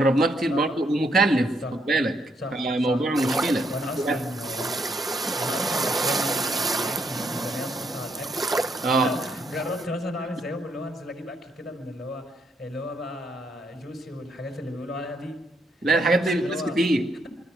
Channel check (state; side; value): normal; both; correlation 0.74